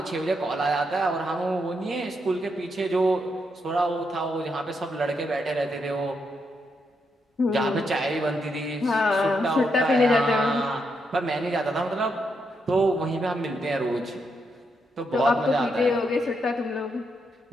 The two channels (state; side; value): normal; both; correlation 0.80